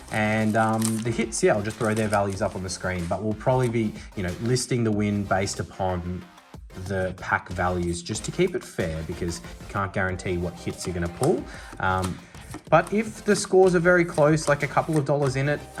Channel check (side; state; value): both; identical; correlation 1.00